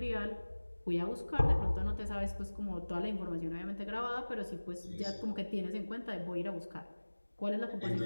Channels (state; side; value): inverted; both; correlation -1.00